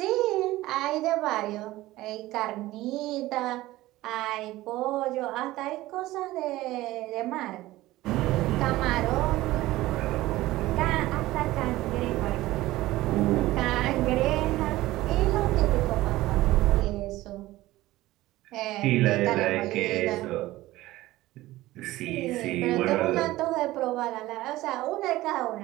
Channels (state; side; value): quieter; left; 17.2 dB